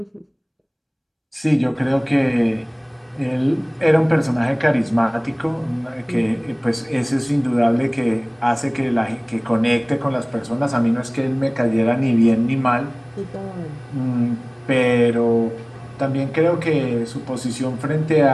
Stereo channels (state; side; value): identical; both; correlation 1.00